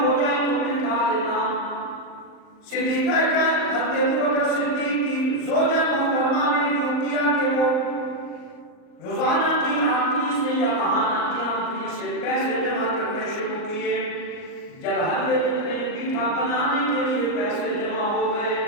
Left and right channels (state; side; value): late; right; 38 ms